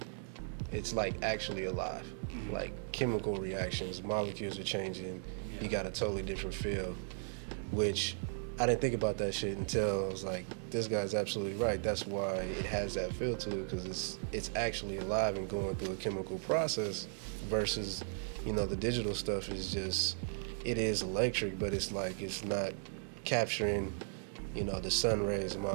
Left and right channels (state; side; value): silent; left; digital silence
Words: alive. Mm-hmm. Like, chemical reactions, molecules are changing. Yeah. You got a totally different feel, which I didn't think about that shit until I was like, this guy's absolutely right. That's why it has that feel to it, because it's actually alive and going through a chemical process, versus, you know, the digital stuff is just, it is electric, but it's like, it's not capturing, you know, the sun rays and